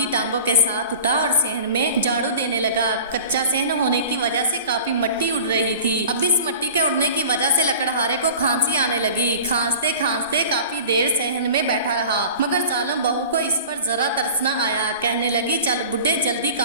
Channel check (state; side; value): inverted; both; correlation -0.40